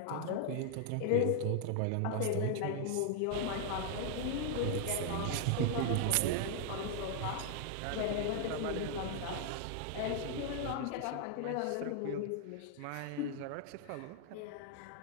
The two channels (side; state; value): both; different; correlation 0.00